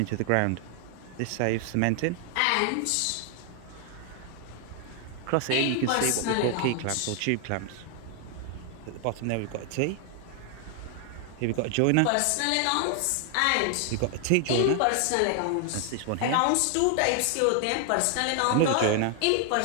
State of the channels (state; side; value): different; both; correlation 0.00